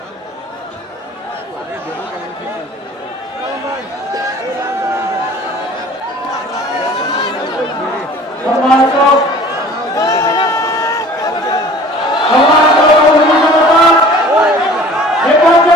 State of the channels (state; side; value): normal; both; correlation 0.47